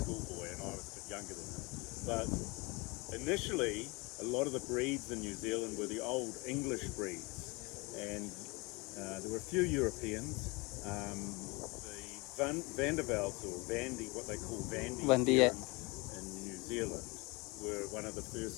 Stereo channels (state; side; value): quieter; right; 26.6 dB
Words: schoolboy, and I was a bit younger than him. But initially, a lot of the breeds in New Zealand were the old English breeds, and there were a few Europeans. The Vandervelds, or Vandy, what they call Vandy Vandy, here yeah. in New Zealand, were one of the